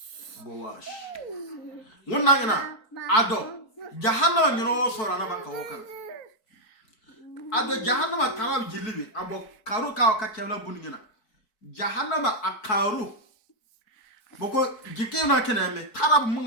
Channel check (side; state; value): right; late; 4.6 ms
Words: wonna ngana ado jahannama nyino sora na banka wokan ado jahannama tarab jillibi abo karu ka kewla buningina jahannama akaru boko jikena keneme tarab